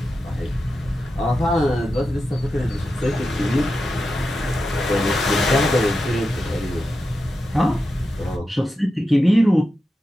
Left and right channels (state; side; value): normal; both; correlation 0.90